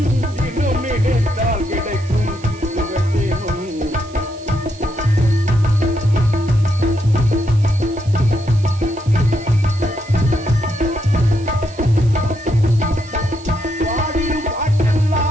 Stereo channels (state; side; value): noise; right; hiss, 23 dB below the sound